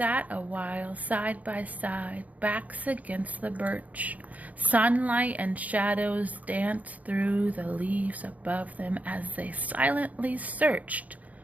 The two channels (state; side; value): late; left; 0.074 ms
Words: a while side by side, backs against the birch. Sunlight and shadows danced through the leaves above them as they silently searched